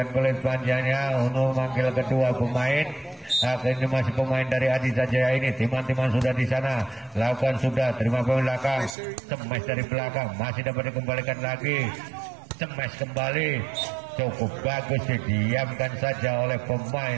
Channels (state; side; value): drops out; left; at 9.0 s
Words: kulit panjangnya untuk memanggil kedua pemain. Ini masih pemain dari Adi Sanjaya ini. Timan-timan sudah di sana, lakukan sudah, terima pemain belakang, cemes dari belakang, masih dapat dikembalikan lagi, cemes kembali, cukup bagus, didiamkan saja oleh